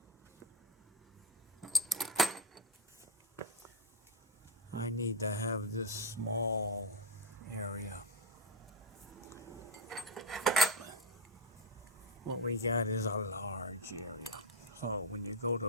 I need to have this small area. What we got is a large area. So when you go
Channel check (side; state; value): both; normal; correlation 0.07